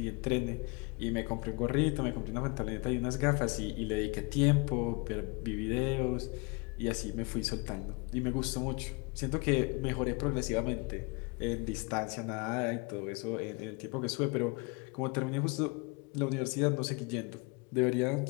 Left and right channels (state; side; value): quieter; right; 29.5 dB